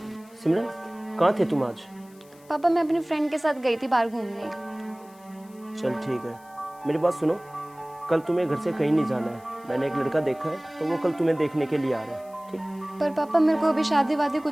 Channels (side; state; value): left; noise; hiss, 27 dB below the sound